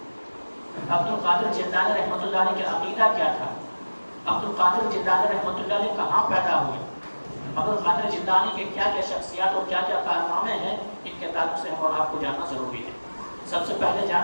عبد القادر جیلانی رحمۃ اللہ علیہ کا عقیدہ کیا تھا، عبد القادر جیلانی رحمۃ اللہ علیہ کہاں پیدا ہوئے، عبد القادر جیلانی کے کیا کیا شخصیات اور کیا کیا کارنامے ہیں، ان کے تعلق سے ہم اور آپ کو جاننا ضروری ہے۔ سب سے پہلے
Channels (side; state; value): both; inverted; correlation -1.00